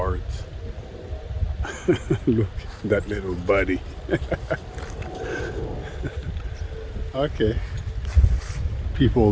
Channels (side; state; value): both; identical; correlation 1.00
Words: Look, that little buddy. Okay, people